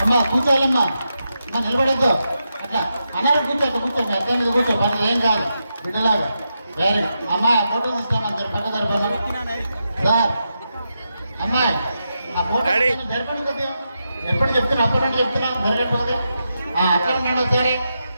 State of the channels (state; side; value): inverted; both; correlation -0.86